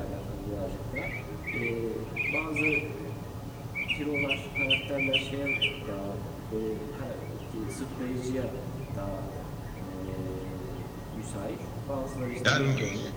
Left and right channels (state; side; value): identical; both; correlation 1.00